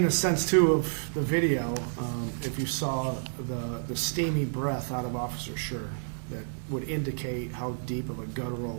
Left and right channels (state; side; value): silent; left; digital silence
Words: the sense too of the video, if you saw the steamy breath out of Officer Schurr, that would indicate how deep of a